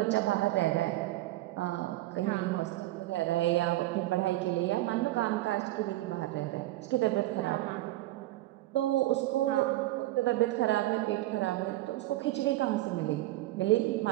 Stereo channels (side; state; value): left; quieter; 16.8 dB